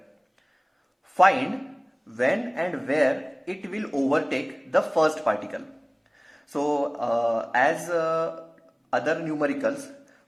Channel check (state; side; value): identical; both; correlation 1.00